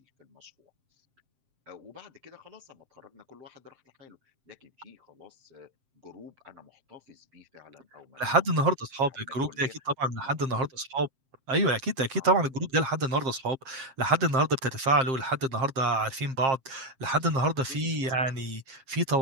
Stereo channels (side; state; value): left; late; 7.5 ms